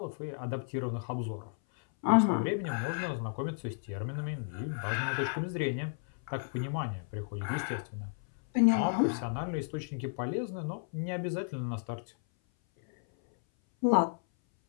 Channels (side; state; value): right; silent; 56 dB below the other